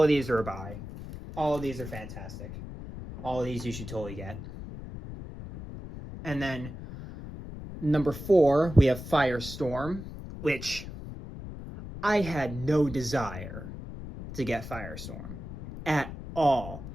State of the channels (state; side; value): noise; left; rumble, 11 dB below the sound